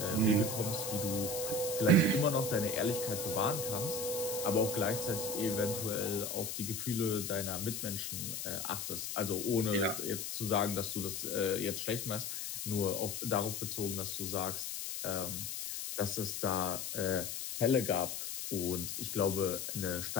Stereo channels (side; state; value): left; noise; hiss, 5 dB below the sound